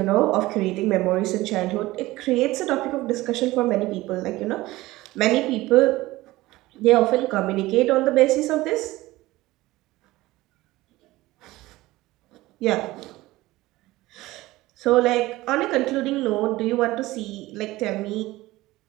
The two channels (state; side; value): quieter; left; 18.4 dB